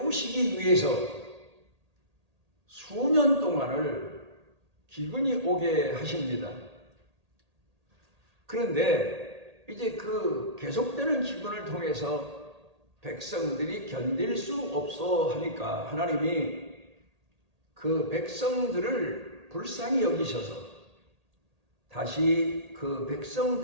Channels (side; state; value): left; late; 1.8 ms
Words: 위해서 수년 동안을 기근이 오게 하십니다. 그런데 이제 그 계속되는 기근을 통해서 백성들이 견딜 수 없어 하니까 하나님이 그 백성들을 불쌍히 여기셔서 다시 그